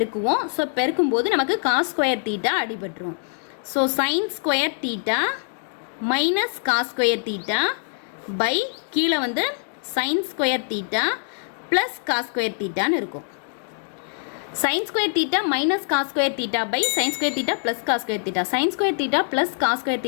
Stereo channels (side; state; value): right; silent; digital silence